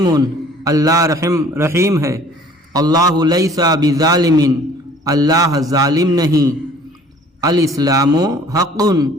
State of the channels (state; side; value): normal; both; correlation 0.53